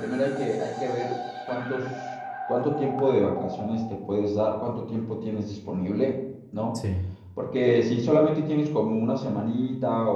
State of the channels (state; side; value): identical; both; correlation 1.00